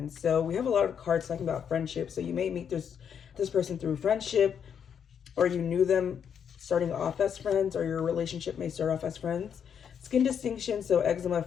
So we have a lot of cards talking about friendship. So you may meet this person through friendship, or you knew them starting off as friends, or your relationship may start off as friends. Skin distinction, so eczema,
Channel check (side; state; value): right; quieter; 7.8 dB